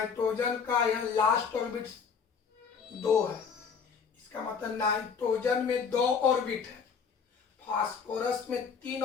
का यह लास्ट ऑर्बिट 2 है, इसका मतलब नाइट्रोजन में 2 ऑर्बिट है, फास्फोरस में 3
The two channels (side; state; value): right; quieter; 6.2 dB